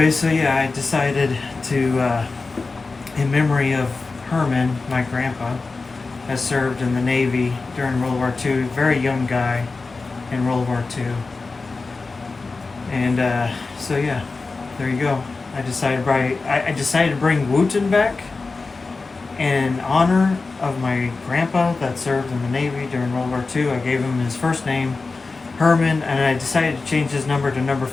so yeah, I decided to, in memory of Hurman, my grandpa, has served in the Navy during World War II. Very young guy in World War II. And so yeah, there you go. I decided to bring Wooten back in honor of my grandpa that served in the Navy during World War II. I gave him his first name, Hurman, and I decided to change his number to number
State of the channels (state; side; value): quieter; right; 3.9 dB